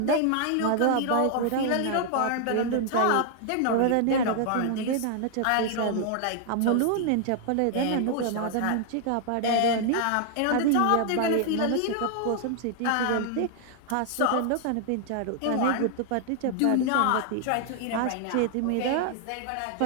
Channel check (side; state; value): both; different; correlation 0.00